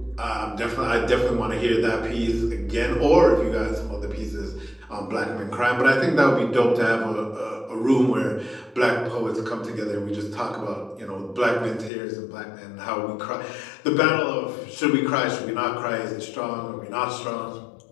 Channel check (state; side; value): drops out; right; at 11.9 s